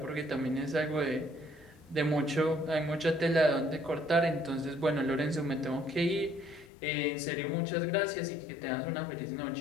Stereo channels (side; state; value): right; drops out; at 6.7 s